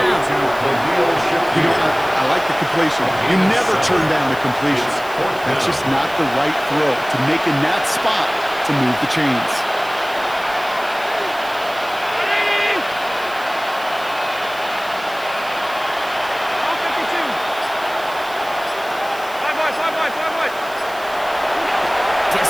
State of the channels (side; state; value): right; noise; hiss, 19 dB below the sound